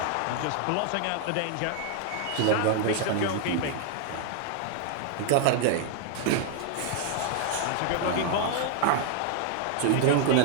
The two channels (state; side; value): different; both; correlation 0.00